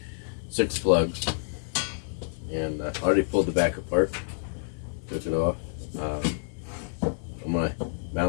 6 plugs, and I already pulled the back apart, took it off. I'm going to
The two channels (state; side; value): silent; right; 58 dB below the other